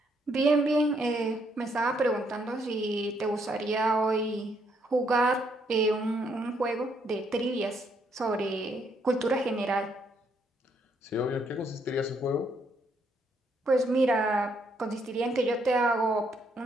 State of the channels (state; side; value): normal; both; correlation 0.72